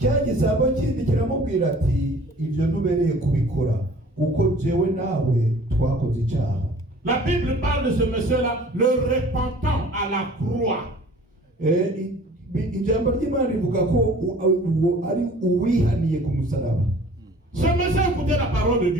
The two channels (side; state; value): both; normal; correlation 0.49